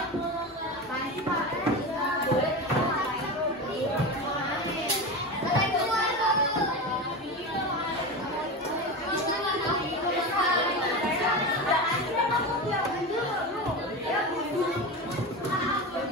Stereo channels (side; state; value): both; normal; correlation 0.23